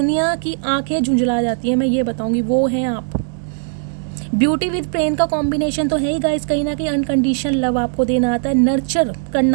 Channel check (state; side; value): silent; left; digital silence